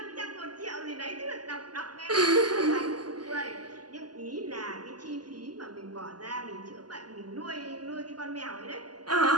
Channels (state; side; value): late; left; 0.70 ms